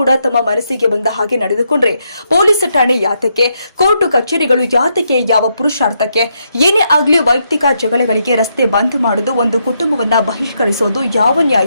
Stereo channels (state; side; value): inverted; both; correlation -0.79